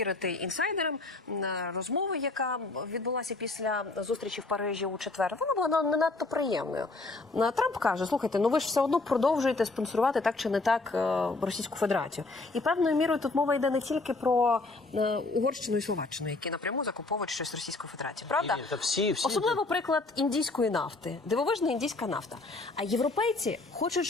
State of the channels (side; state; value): right; quieter; 3.3 dB